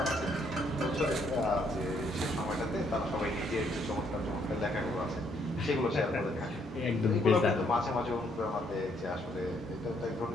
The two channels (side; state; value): both; normal; correlation 0.70